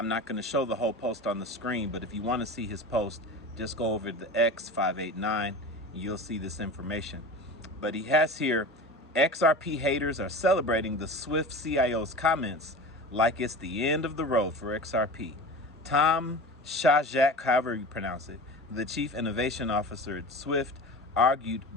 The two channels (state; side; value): normal; both; correlation 0.33